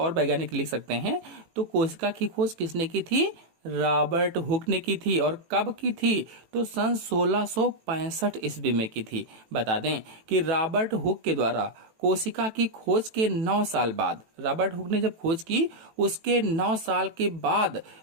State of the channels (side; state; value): left; late; 18 ms